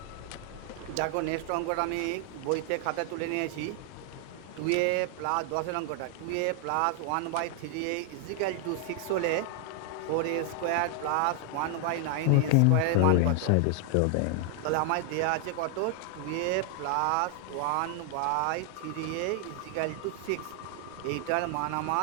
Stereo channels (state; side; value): different; both; correlation 0.00